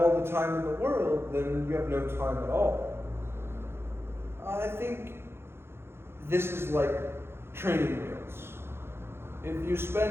the time in the world, then you have no time at all. I think this is like training wheels. If you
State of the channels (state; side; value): late; left; 0.12 ms